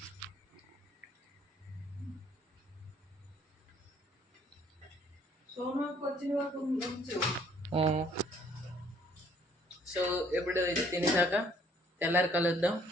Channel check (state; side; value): normal; both; correlation 0.61